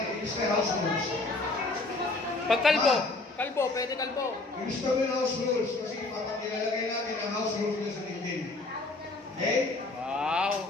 Ilis kaya house rules. Pag kalbo, kalbo, pwede kalbo. Ilis kami ng house rules kasi papakilalagay natin ang house rules na sa LinkedIn. Okay? Wow!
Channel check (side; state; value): right; quieter; 3.2 dB